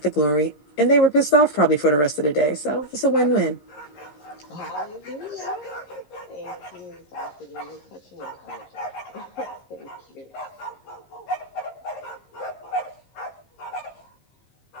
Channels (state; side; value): late; right; 15 ms